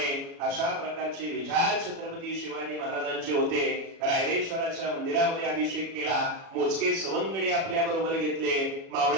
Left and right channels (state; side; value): late; left; 36 ms